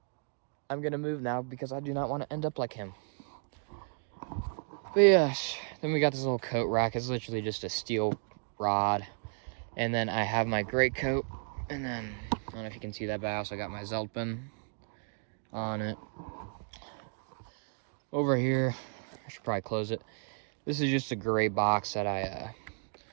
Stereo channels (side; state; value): left; silent; 56 dB below the other